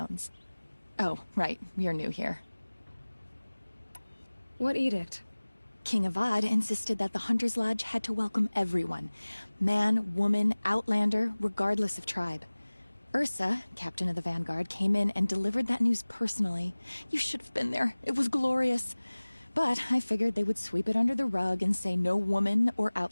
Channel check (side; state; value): both; inverted; correlation -1.00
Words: Oh, right, you're new here. What edict? King Avad insisted that the Hunter's Lodge had to welcome everyone. Man, woman, outlander, regardless of tribe. Ursa, captain of the Vanguard, came in and delivered that news personally. You should have been there. It was glorious. But I figured they would sweep it under the rug and say no woman or